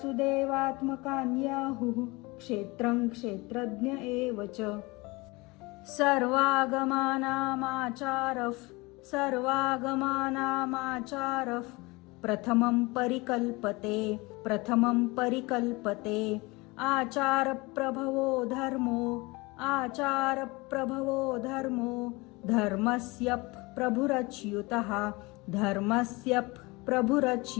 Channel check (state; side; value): quieter; right; 24.3 dB